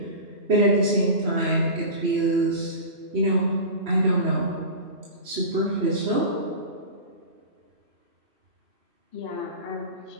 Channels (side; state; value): left; late; 2.5 ms